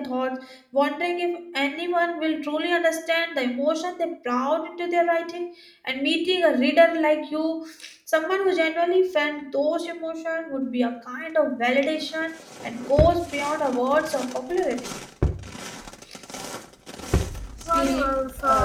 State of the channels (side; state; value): both; identical; correlation 1.00